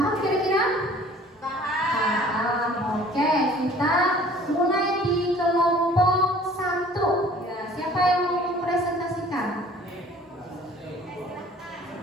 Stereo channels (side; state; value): both; normal; correlation 0.51